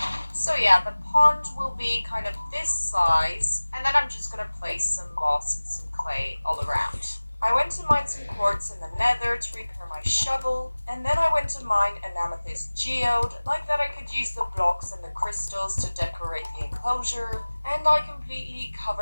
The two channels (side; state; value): both; inverted; correlation -1.00